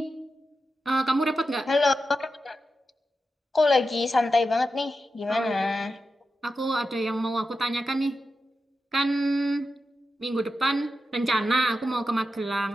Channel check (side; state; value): both; normal; correlation 0.90